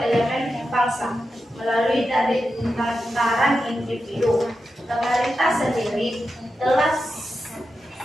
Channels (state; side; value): normal; both; correlation 0.89